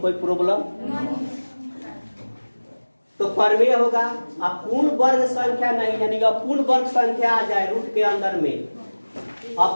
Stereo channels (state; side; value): inverted; both; correlation -1.00